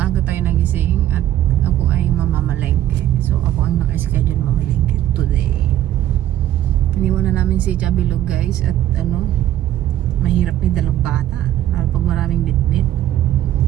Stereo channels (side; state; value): left; quieter; 12.7 dB